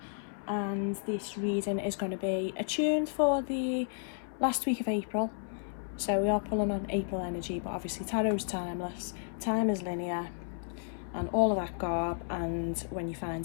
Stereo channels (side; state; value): right; silent; 56 dB below the other